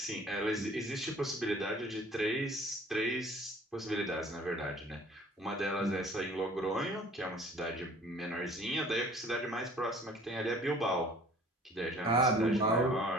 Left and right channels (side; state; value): both; normal; correlation 0.51